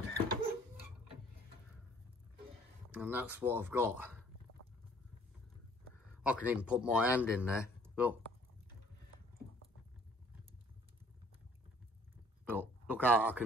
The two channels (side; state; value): both; normal; correlation 0.57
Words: And that's what I've got. I can even put my hand in there. Look. Look how I